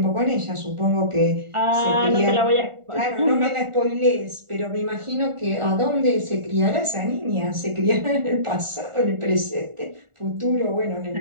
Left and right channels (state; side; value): late; left; 1.4 ms